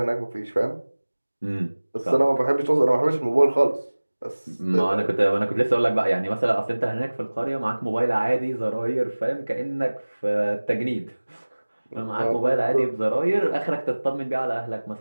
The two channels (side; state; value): both; inverted; correlation -1.00